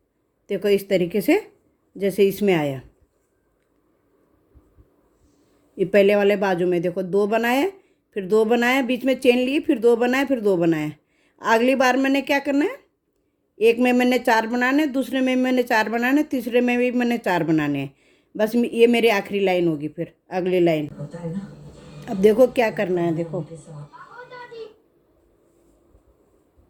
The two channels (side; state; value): both; identical; correlation 1.00